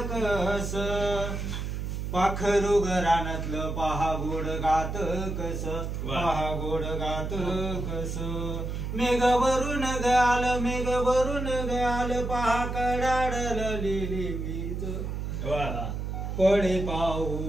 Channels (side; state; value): right; noise; hum, 4 dB below the sound